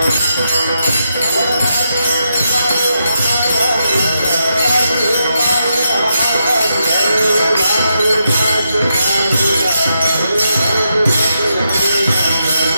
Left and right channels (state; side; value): inverted; both; correlation -0.83